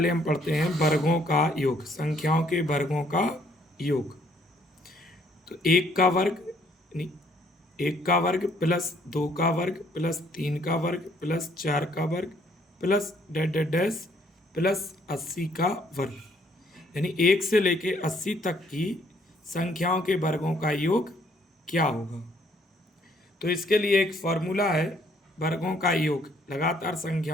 हम पढ़ते हैं वर्गों का योग, संख्याओं के वर्गों का योग। तो एक का वर्ग यानी एक का वर्ग प्लस दो का वर्ग प्लस तीन का वर्ग प्लस चार का वर्ग plus dash dash dash plus 80 का वर्ग, यानी 1 से लेके 80 तक की संख्याओं के वर्गों का योग क्या होगा। तो इसके लिए एक फॉर्मूला है, वर्गों का योग लगातार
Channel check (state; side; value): normal; both; correlation 0.66